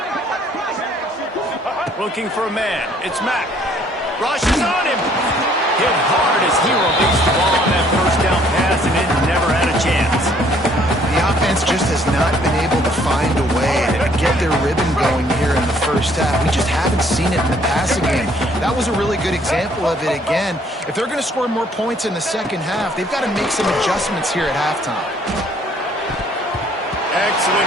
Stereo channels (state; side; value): normal; both; correlation 0.62